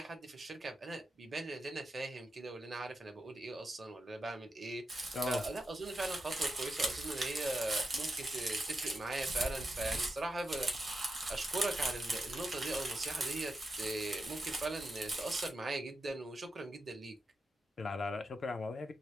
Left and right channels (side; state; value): both; normal; correlation 0.89